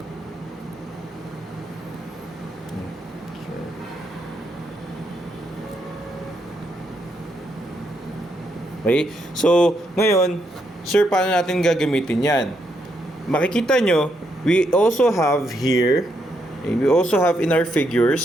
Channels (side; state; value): both; normal; correlation 0.78